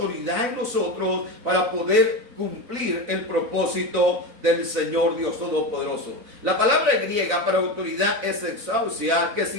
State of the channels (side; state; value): left; late; 4.0 ms